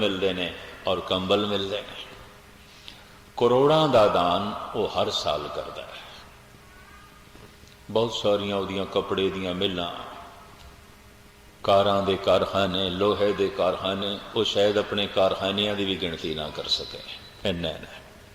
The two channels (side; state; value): both; identical; correlation 1.00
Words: ने और कंबल मिलदे ने। करोड़ां दा दान वो हर साल करदा है। बहुत सारियां उहदियां कपड़े दियां मिलां, कारां दे कारखाने, लोहे दे कारखाने, वो शायद अपने कारखानियां दी भी गिनती ना कर सके, इन्ने ने